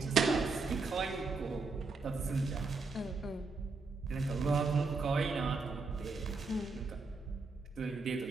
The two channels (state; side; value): quieter; left; 4.1 dB